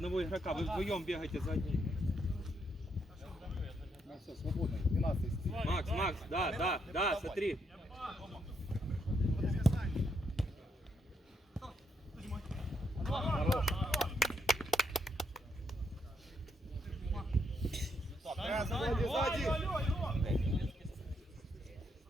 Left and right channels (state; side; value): normal; both; correlation 0.77